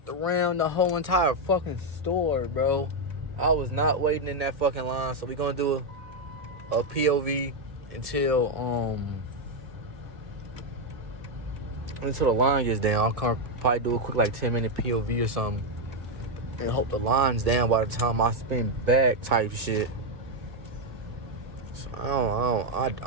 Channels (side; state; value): left; late; 1.8 ms